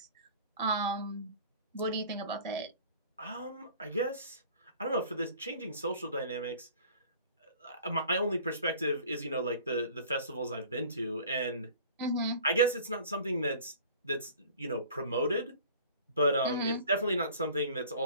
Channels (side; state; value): both; inverted; correlation -0.47